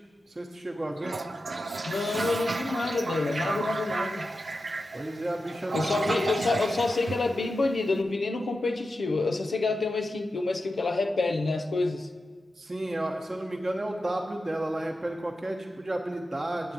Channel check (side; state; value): both; normal; correlation 0.91